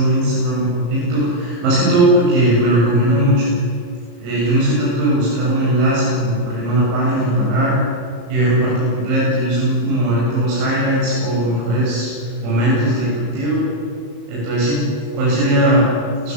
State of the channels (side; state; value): left; late; 34 ms